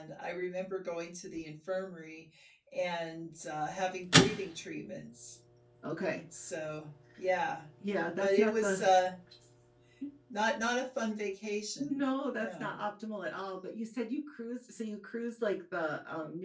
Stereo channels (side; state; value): both; identical; correlation 1.00